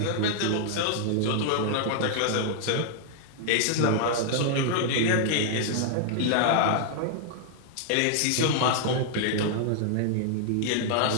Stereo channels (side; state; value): both; different; correlation -0.01